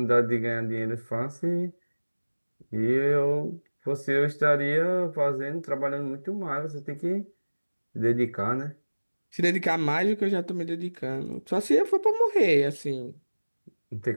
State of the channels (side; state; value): both; inverted; correlation -1.00